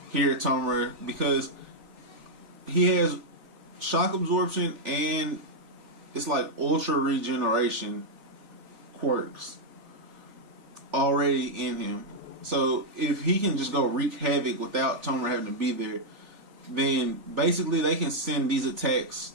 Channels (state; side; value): late; left; 3.5 ms